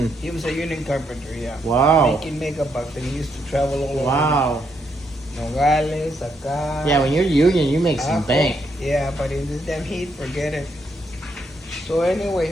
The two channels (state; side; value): normal; both; correlation 0.76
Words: He was a union carpenter, yeah. Wow. Making mega bucks, and he used to travel all over. Wow. Nogales, acá. Yeah, when you're union, you make some bank. Yeah, but in this damn heat, forget it. So